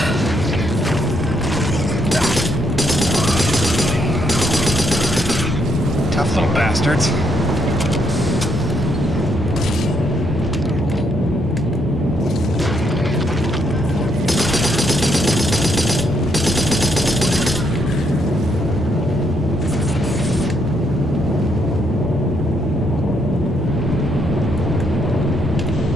Tough little bastards.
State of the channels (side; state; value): both; normal; correlation 0.74